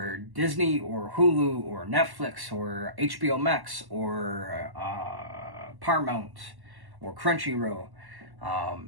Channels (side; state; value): left; late; 1.1 ms